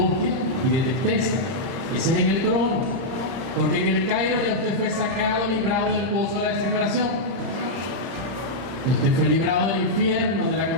y de tristeza. Ese es en el trono, porque en el Cairo ya usted fue sacado, librado del pozo de la desesperación. Usted fue librado del infierno, de la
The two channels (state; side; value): late; left; 31 ms